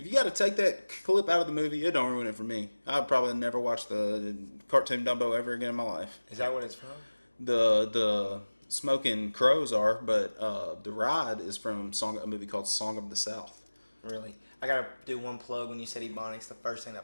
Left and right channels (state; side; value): inverted; both; correlation -1.00